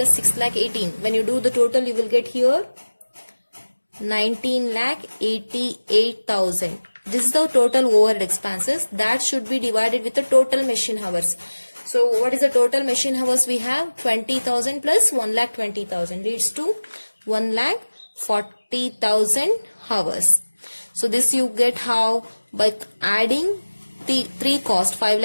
6,18,000. When you do the total, you will get here 19,88,000. This is the total overhead expenses. That should be divided with the total machine hours. So what is the total machine hours we have? 20,000 plus 1,20,000 leads to 1,40,000 hours. So this you get how? By adding the three cost,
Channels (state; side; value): inverted; both; correlation -1.00